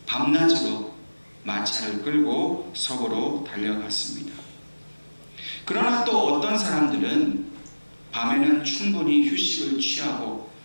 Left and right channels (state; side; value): inverted; both; correlation -1.00